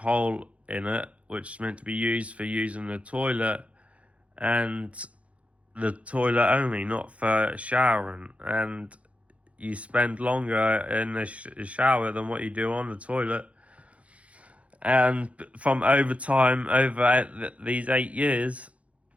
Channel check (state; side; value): late; left; 0.064 ms